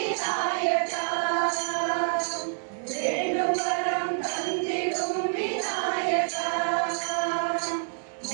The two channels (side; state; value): left; silent; digital silence